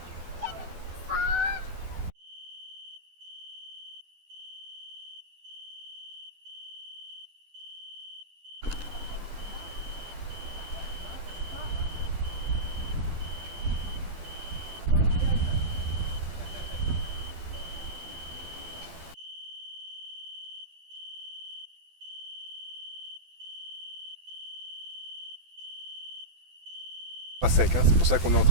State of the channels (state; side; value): late; left; 12 ms